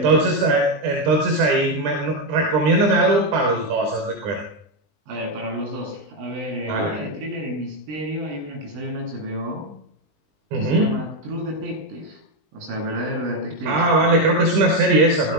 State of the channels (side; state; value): left; late; 20 ms